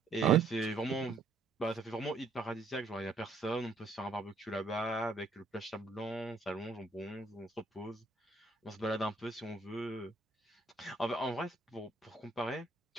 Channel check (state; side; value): quieter; left; 3.6 dB